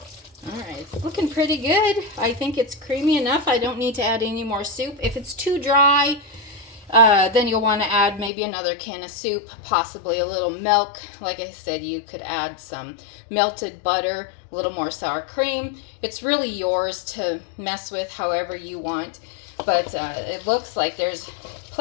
Alright, it's looking pretty good. I think it's creamy enough. I don't need to add any more soup. If it's too dry, then you'll want to add maybe another can of soup, possibly a little milk. Like I said, you could add some melted butter, a little more sour cream. It's really yours to mess with however you want. But it looks like there's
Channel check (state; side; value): drops out; right; at 8.3 s